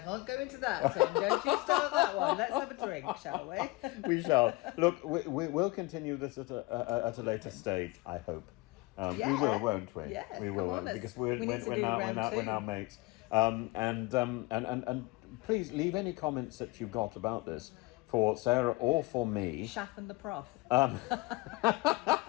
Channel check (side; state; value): right; quieter; 21.9 dB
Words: go into that, Tim. Don't you start that one. Let's have a drink, shall we? We shall. Look, we'll continue this at a later stage, I hope. We will, won't we? Yeah, we will, because we're now mates. And please leave any comments that you've got about this for Sarah or for me. Shaff and the Prof.